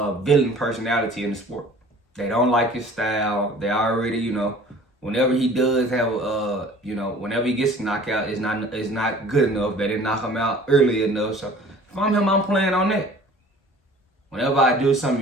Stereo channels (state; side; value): normal; both; correlation 0.48